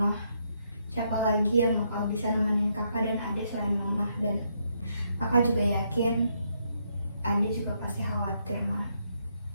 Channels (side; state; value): both; inverted; correlation -0.76